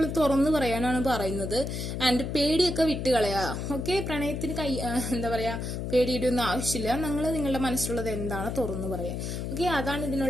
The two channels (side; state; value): left; noise; hum, 4 dB below the sound